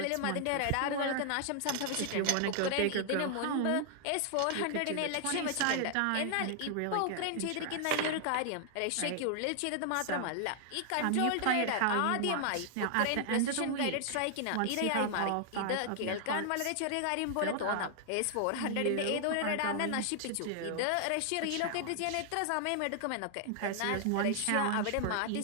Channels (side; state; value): both; different; correlation 0.00